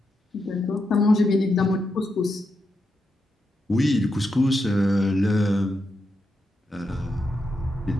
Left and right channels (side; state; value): both; normal; correlation 0.84